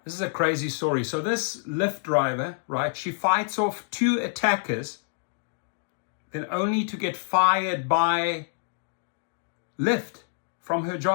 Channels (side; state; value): right; silent; digital silence